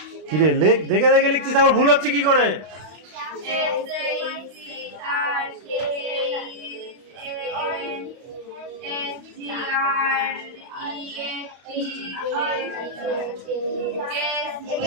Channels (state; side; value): late; left; 32 ms